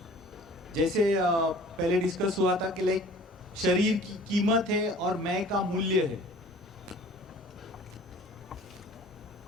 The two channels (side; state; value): both; normal; correlation 0.48